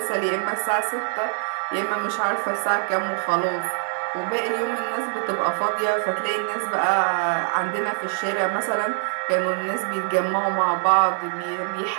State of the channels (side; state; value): left; silent; 58 dB below the other